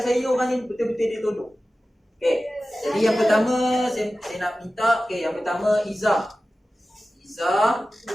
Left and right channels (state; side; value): normal; both; correlation 0.95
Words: saya orang ni betul-betul dia tolong. Okey. Jadi yang pertama saya nak minta, okey, yang pertama Izzah,